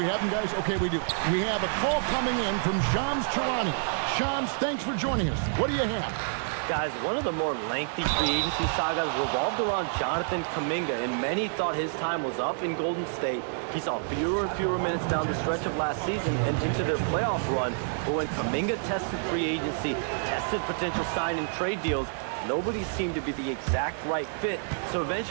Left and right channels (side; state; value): left; silent; digital silence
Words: have him, guys? Okay, we do. We have a call coming in from Shams Charani. Shams, thanks for joining us. What do you have? Guys, one of the more lengthy free agency sagas revolved around Jonathan Kuminga, and many thought his time was up in Golden State. He saw fewer and fewer minutes down the stretch of last season and into their playoff run. But when Kuminga tested free agency, tested potential sign and trade deals, nobody seemed to be the exact right fit. So